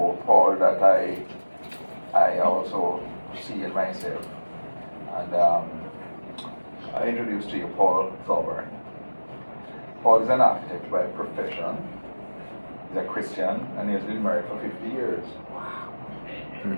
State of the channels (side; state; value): both; inverted; correlation -1.00